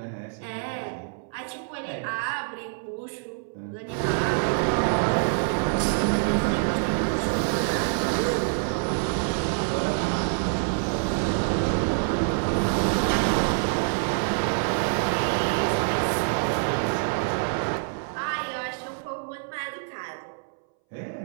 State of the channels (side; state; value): left; silent; 61 dB below the other